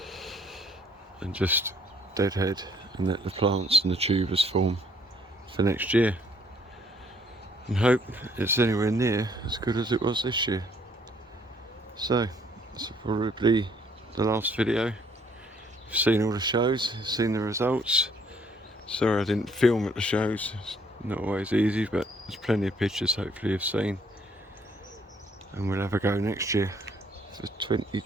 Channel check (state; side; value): normal; both; correlation 0.64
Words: and just deadhead and let the plants and the tubers form for next year, and hope it's anywhere near as good as it was this year. So that's probably the last video. You've seen all the shows, you've seen the results. Sorry I didn't film at the shows, it's not always easy, but there's plenty of pictures hopefully you've seen, and we'll have a go next year for